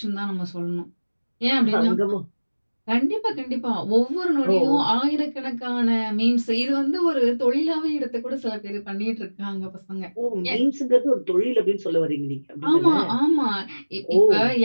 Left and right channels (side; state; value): both; inverted; correlation -1.00